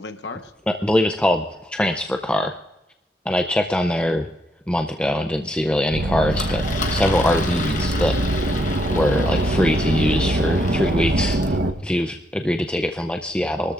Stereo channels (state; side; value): normal; both; correlation 0.77